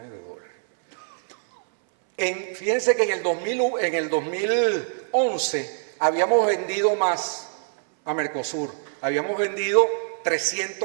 de dólares. Fíjense que en el 2011 habíamos vendido más a Mercosur, habíamos vendido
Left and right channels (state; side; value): silent; left; 61 dB below the other